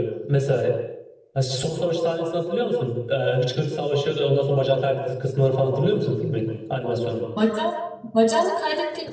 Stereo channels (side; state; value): both; identical; correlation 1.00